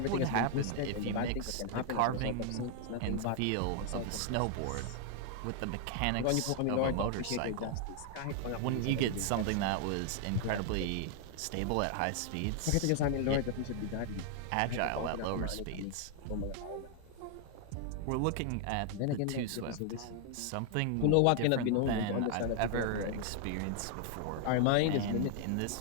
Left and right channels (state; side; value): different; both; correlation 0.00